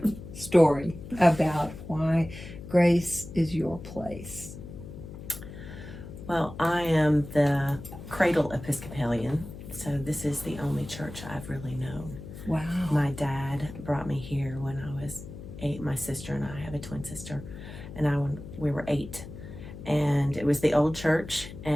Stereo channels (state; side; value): noise; left; hum, 13 dB below the sound